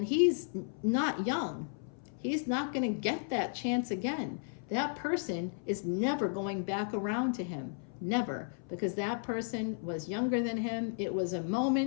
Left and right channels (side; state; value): right; silent; 55 dB below the other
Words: he's not young. He's not going to get that chance again. That person is never going back around to him. Never. Because that person was younger than him. It was a